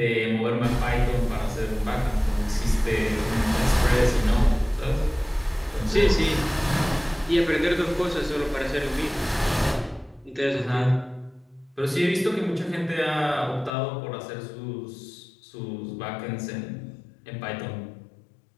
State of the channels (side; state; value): right; drops out; at 13.7 s